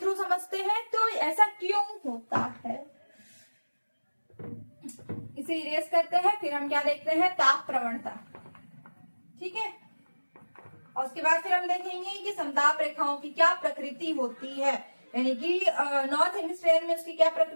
समझते हैं। तो ऐसा क्यों होता है, इसे इरेज करते हैं, फिर हम क्या देखते हैं, ताप प्रवणता। ठीक है, और उसके बाद फिर हम देखेंगे कि समताप रेखाओं की क्या प्रकृति होती है, यानी कि नॉर्थ हेमिस्फेयर में उसकी क्या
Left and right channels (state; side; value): inverted; both; correlation -1.00